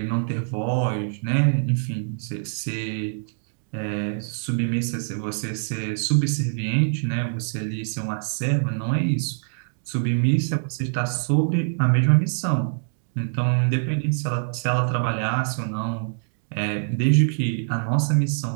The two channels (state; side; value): silent; left; digital silence